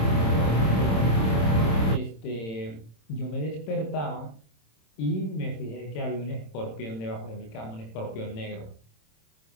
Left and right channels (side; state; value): right; late; 27 ms